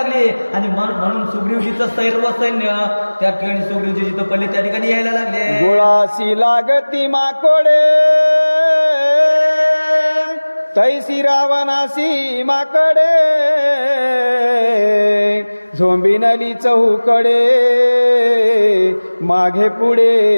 लागली आणि म्हणून सुग्रीवजीचं सर्व सैन्य त्या ठिकाणी सुग्रीवजी जिथं पडले त्या ठिकाणी यायला लागले. गुळासी लागती माकोडे तैसी रावणासी माकडे झोंबिनली चहूकडे मागे पुढे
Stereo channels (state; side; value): inverted; both; correlation -1.00